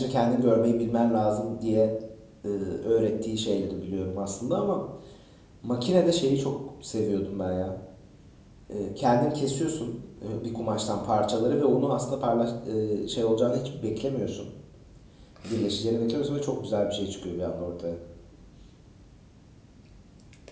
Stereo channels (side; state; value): both; identical; correlation 1.00